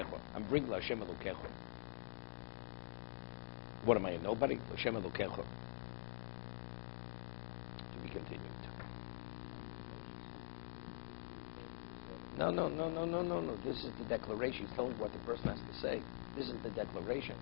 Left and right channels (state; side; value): silent; right; digital silence